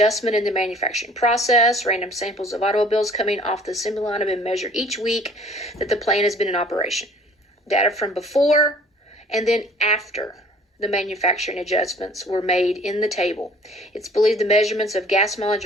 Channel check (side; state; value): both; normal; correlation 0.52